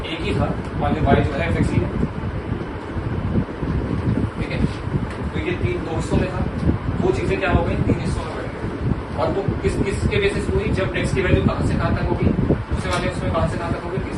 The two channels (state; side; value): identical; both; correlation 1.00